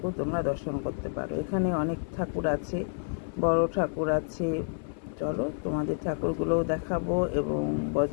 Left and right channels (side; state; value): right; silent; 58 dB below the other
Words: তোমরা দর্শন করতে পারো। এখানে অনেক ঠাকুর আছে, বড় ঠাকুর আছে। চলো তোমাদের ঠাকুরগুলোও দেখাবো এবং